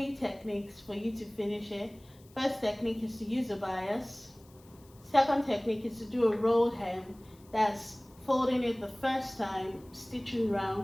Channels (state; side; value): noise; left; hiss, 28 dB below the sound